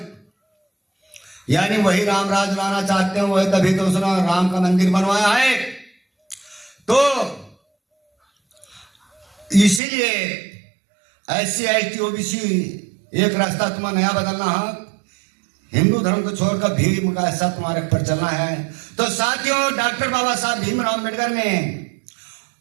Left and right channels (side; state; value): left; drops out; at 9.8 s